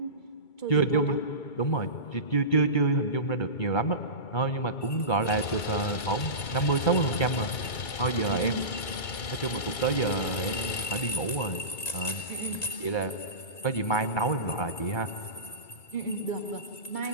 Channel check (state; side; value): late; right; 2.3 ms